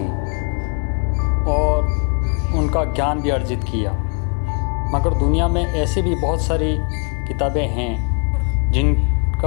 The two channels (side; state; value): right; quieter; 34.3 dB